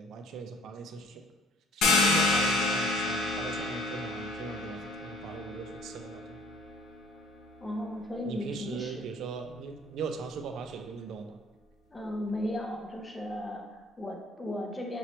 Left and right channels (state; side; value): normal; both; correlation 0.55